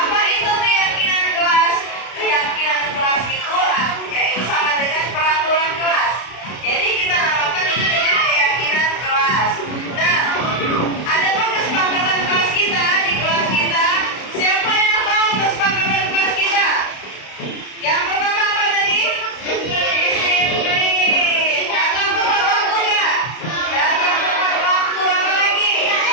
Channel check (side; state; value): right; late; 32 ms